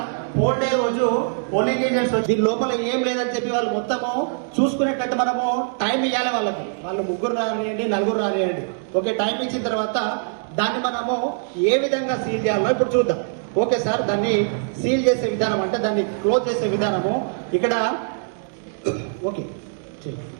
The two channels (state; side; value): silent; left; digital silence